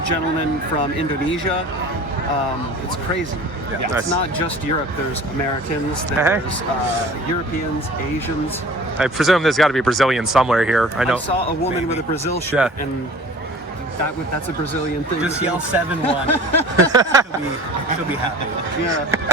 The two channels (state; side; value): normal; both; correlation 0.44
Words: gentlemen from Indonesia. It's crazy. Yeah. It's Nice. not just Europe. There's Americans. There's Europeans, Asians. I presume there's got to be a Brazilian somewhere here. I know. I saw a woman with a Brazil shirt, and that's a Brazilian thing. Just yell 7-1. she'll be happy. Yeah.